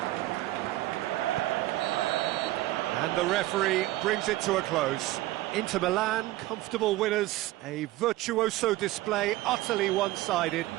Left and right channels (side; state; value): left; quieter; 16.9 dB